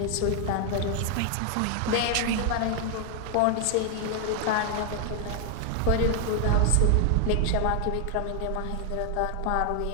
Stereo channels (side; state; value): both; different; correlation 0.00